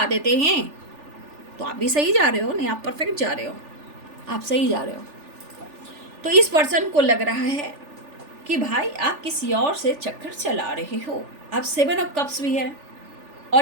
देते हैं। तो आप भी सही जा रहे हो, नहीं आप परफेक्ट जा रहे हो, आप सही जा रहे हो। तो इस पर्सन को लग रहा है कि भाई आप किसी और से चक्कर चला रहे हो। अब 7 ऑफ कप्स भी है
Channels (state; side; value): late; left; 3.4 ms